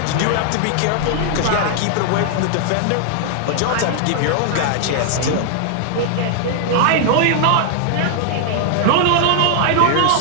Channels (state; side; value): different; both; correlation 0.00